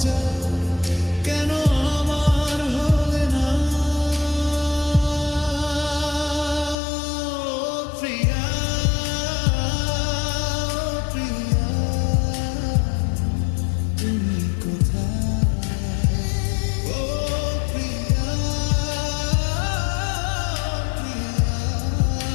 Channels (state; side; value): drops out; right; at 6.8 s